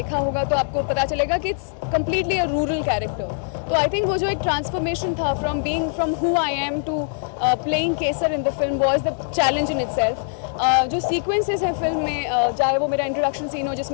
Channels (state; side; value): silent; right; digital silence